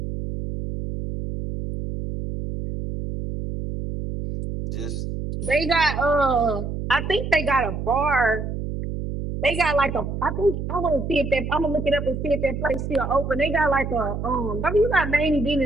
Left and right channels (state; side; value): noise; right; hum, 5 dB below the sound